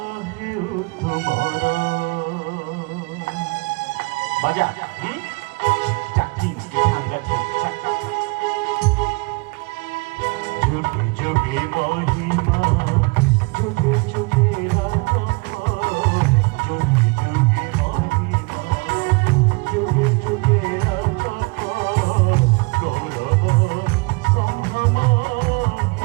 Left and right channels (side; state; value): left; quieter; 28.8 dB